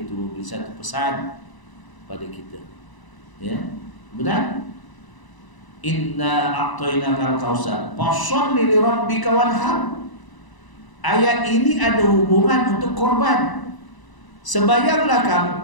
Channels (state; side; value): late; right; 1.0 ms